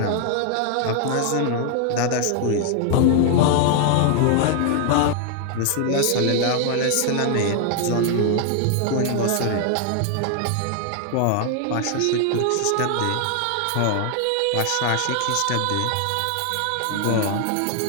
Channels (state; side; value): different; both; correlation 0.00